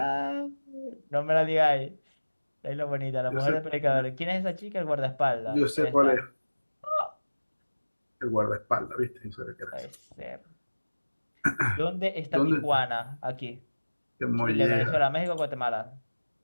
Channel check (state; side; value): inverted; both; correlation -1.00